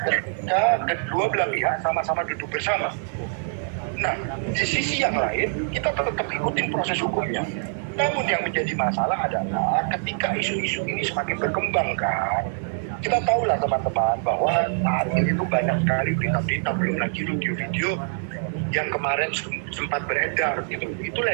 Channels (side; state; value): left; silent; 62 dB below the other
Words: ketika kedua belah pihak sama-sama duduk bersama. Nah, di sisi yang lain kita tetap ikutin proses hukumnya. Namun yang menjadi masalah adalah ketika isu-isu ini semakin berkembang kan. Kita tahulah teman-teman bahwa saat ini tuh banyak sekali berita-berita, belum lagi video-video yang kemarin sempat beredar gitu.